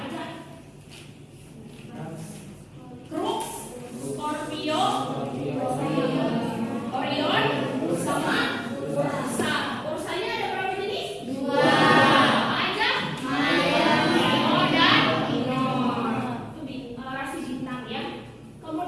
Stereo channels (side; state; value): both; identical; correlation 1.00